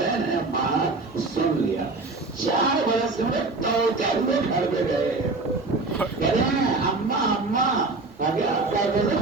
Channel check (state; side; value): quieter; left; 3.5 dB